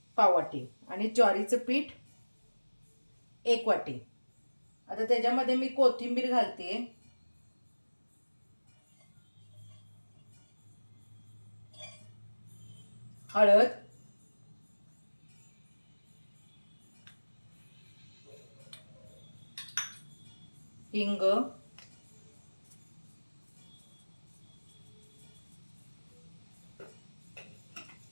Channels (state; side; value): inverted; both; correlation -1.00